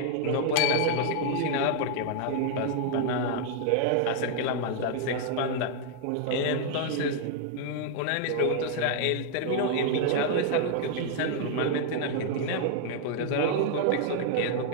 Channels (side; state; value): both; different; correlation 0.00